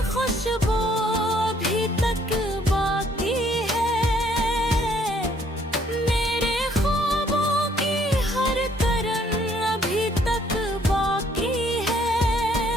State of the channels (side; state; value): both; normal; correlation 0.65